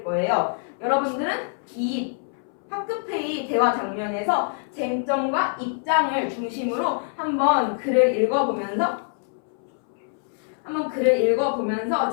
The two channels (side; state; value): right; silent; 62 dB below the other